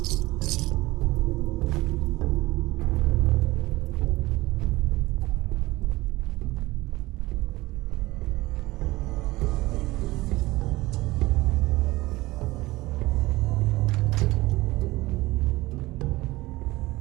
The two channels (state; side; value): quieter; left; 19.6 dB